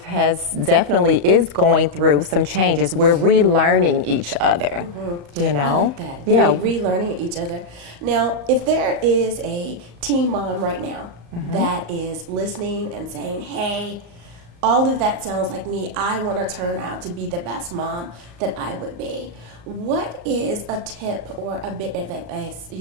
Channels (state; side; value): late; left; 35 ms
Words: is going through some changes. We're relearning each other, you know? I like that. Yeah. Relearning each other. Now, if there is a teen mom right now that is listening and saying, hey, all of that sounds like me. I want to turn out to be the best mom that I would be. What is a tip or a bit of advice